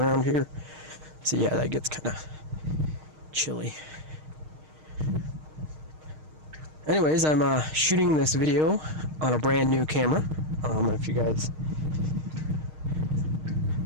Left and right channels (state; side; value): late; left; 6.5 ms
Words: here. So yeah, that gets kind of chilly. Anyways, I'm shooting this video on a brand new camera. If you guys